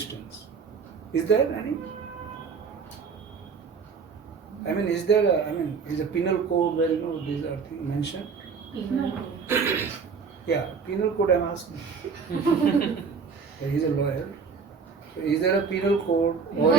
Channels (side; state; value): left; quieter; 5.5 dB